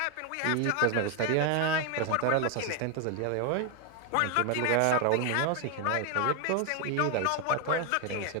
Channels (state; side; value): different; both; correlation 0.01